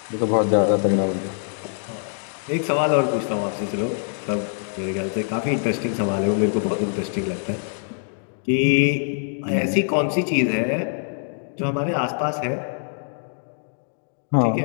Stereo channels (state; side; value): silent; right; digital silence